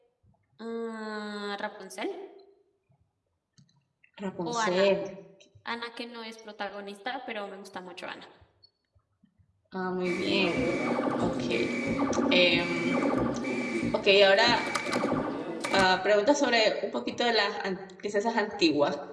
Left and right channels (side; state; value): both; identical; correlation 1.00